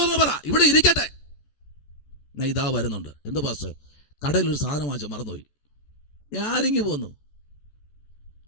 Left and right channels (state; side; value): late; right; 14 ms